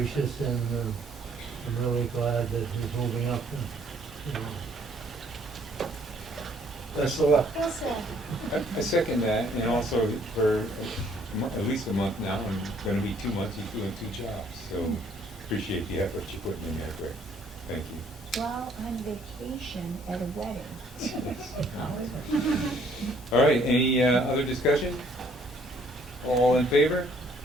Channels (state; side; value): normal; both; correlation 0.63